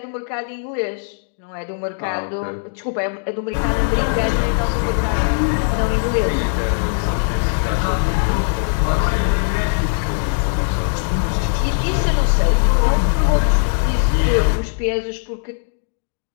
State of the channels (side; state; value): right; silent; digital silence